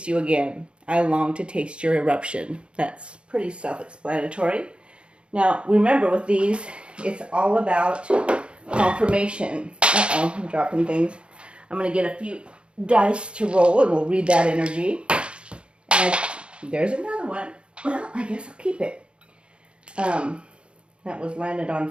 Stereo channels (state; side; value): late; left; 0.056 ms